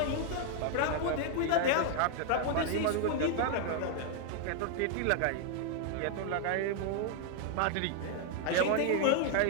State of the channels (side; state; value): both; different; correlation 0.00